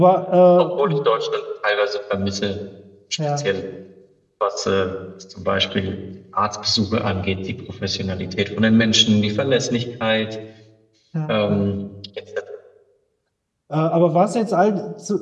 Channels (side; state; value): both; identical; correlation 1.00